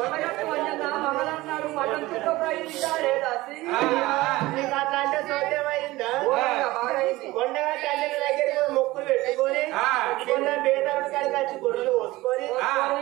ఆంజన్న మంగళన్నాడు మటన్ చుక్క ప్రయాణించాలే దాసి నీకు అట్లాంటి సౌద్యమైందా బాగా అయింది కొండగట్టు అంజన దగ్గరికి పోయి మొక్కులు పెట్టుకొని కొండ బేదరుడు కాడికి వచ్చి గొర్రెలు పోసుకొని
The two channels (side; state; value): left; quieter; 19.0 dB